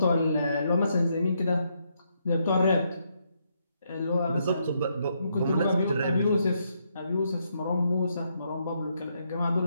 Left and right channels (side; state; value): both; inverted; correlation -0.77